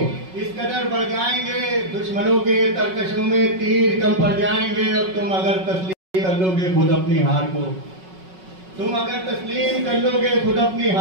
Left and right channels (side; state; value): left; late; 5.4 ms